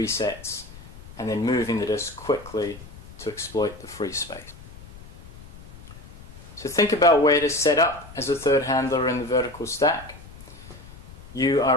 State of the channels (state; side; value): noise; left; rumble, 17 dB below the sound